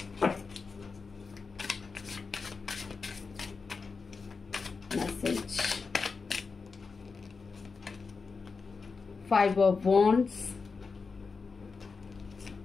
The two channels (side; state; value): right; quieter; 4.7 dB